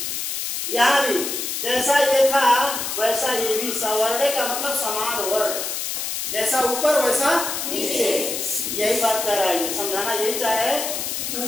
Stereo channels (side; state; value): left; noise; hiss, 3 dB below the sound